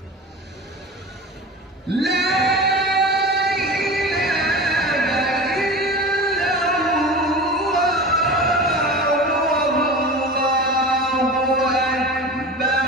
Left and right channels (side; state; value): both; normal; correlation 0.32